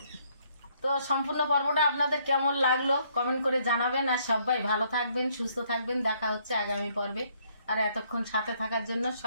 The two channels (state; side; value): inverted; both; correlation -0.68